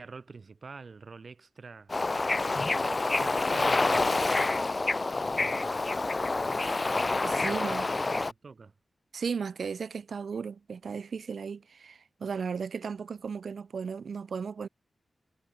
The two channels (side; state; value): both; normal; correlation 0.95